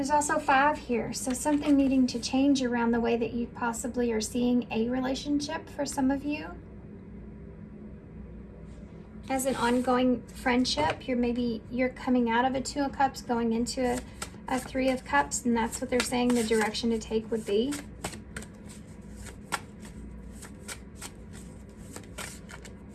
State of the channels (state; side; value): identical; both; correlation 1.00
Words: also 5 here, so something needing to change around the way that you possibly are seeing a relationship for some of you. As an ongoing friendship, you're coming out of a Two of Cups, going into a Three of Cups, and that's what they're saying the direction to take would be.